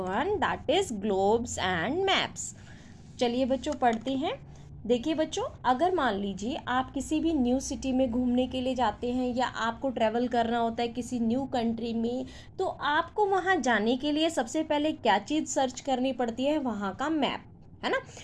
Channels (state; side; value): identical; both; correlation 1.00